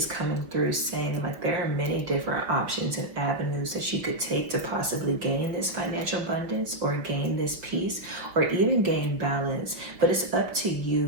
coming through saying like there are many different options and avenues that you could take to possibly gain this financial abundance or gain this peace or even gain balance, but it's up to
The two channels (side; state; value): left; late; 5.8 ms